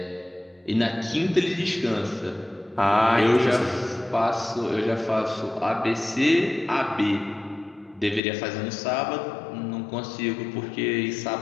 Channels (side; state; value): right; drops out; at 8.2 s